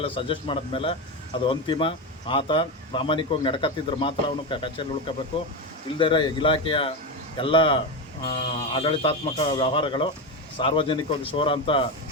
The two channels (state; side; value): normal; both; correlation 0.15